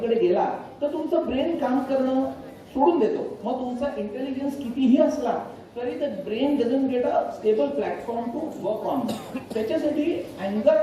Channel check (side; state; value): both; identical; correlation 1.00